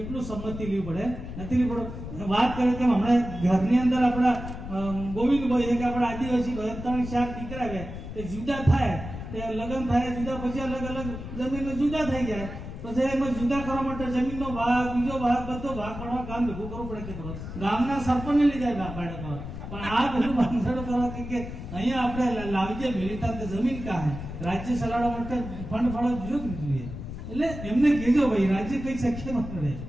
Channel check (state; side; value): noise; left; rumble, 9 dB below the sound